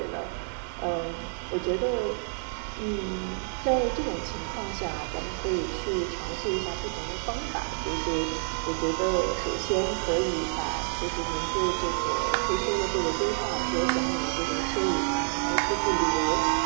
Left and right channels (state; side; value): silent; left; digital silence